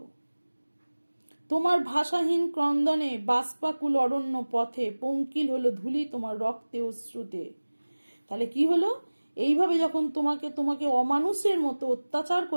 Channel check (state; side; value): inverted; both; correlation -1.00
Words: তোমার ভাষাহীন ক্রন্দনে বাষ্পাকুল অরণ্য পথে পঙ্কিল হলো ধুলি তোমার রক্তে অশ্রুতে। তাহলে কি হলো, এইভাবে যখন তোমাকে অমানুষের মতো অত্যাচার